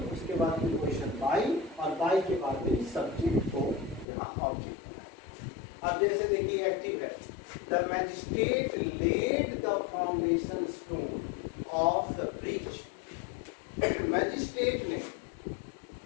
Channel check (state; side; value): drops out; right; at 4.0 s